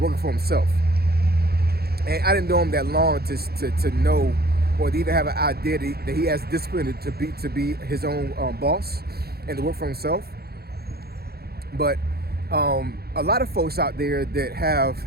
for himself. And I didn't know him that long to know, or to even have an idea that he has discipline to be his own boss and to work for himself. But a lot of folks out there that have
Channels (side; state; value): left; late; 0.46 ms